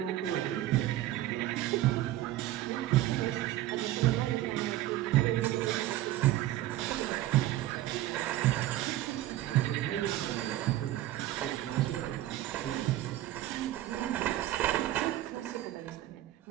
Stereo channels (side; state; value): left; quieter; 14.5 dB